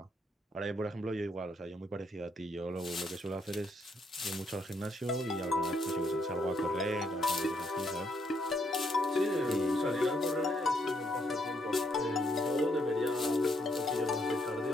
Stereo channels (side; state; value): both; normal; correlation 0.74